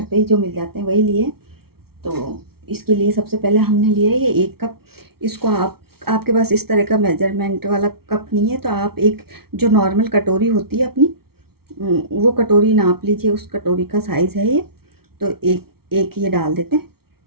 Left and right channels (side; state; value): left; late; 0.94 ms